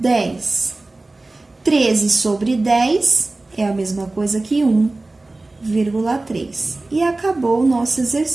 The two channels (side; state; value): left; quieter; 3.1 dB